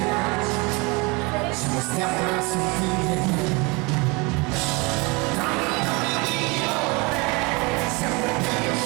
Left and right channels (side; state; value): left; quieter; 27.4 dB